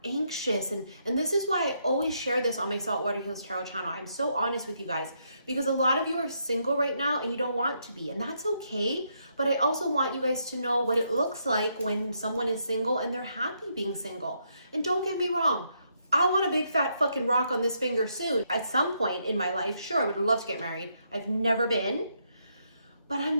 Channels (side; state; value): both; inverted; correlation -0.77